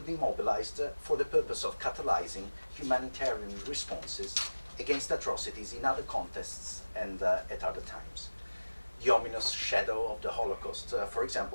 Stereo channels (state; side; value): inverted; both; correlation -1.00